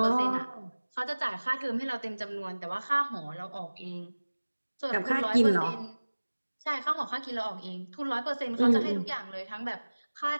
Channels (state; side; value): inverted; both; correlation -1.00